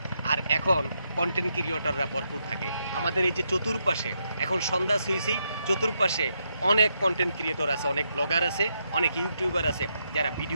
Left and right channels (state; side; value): inverted; both; correlation -0.80